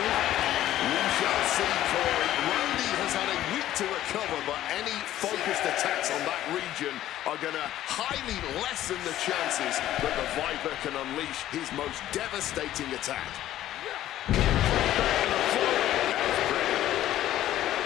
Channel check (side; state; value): right; quieter; 13.2 dB